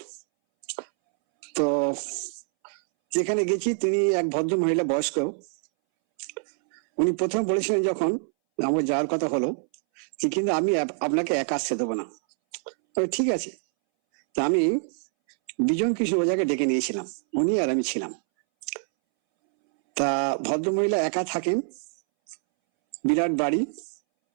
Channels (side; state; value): left; silent; 61 dB below the other